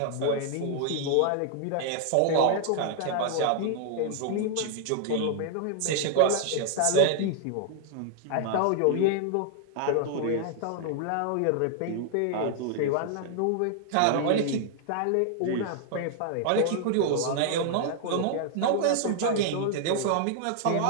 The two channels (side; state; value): both; different; correlation 0.00